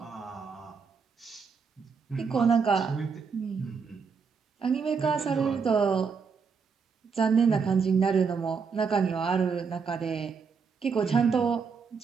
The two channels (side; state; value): left; quieter; 5.6 dB